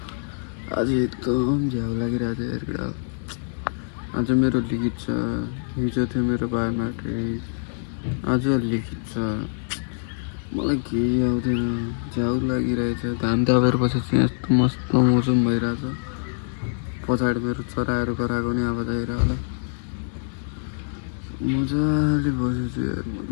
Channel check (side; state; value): right; silent; digital silence